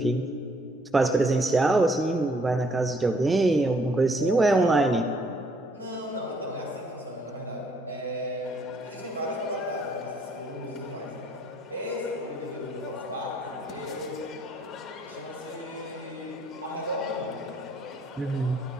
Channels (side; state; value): both; normal; correlation 0.65